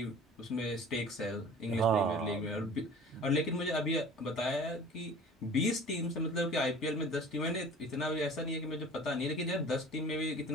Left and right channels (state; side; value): normal; both; correlation 0.43